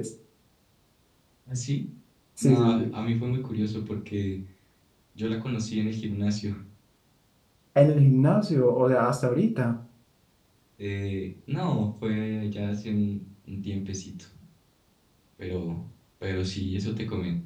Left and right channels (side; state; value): both; identical; correlation 1.00